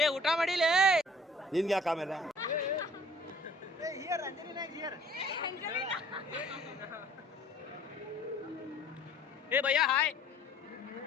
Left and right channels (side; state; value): both; normal; correlation 0.55